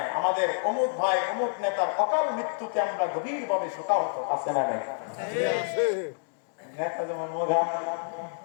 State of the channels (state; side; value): silent; right; digital silence